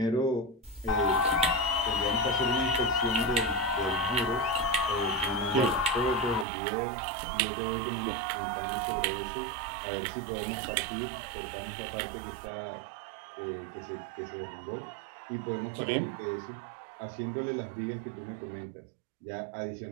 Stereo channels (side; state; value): left; drops out; at 6.5 s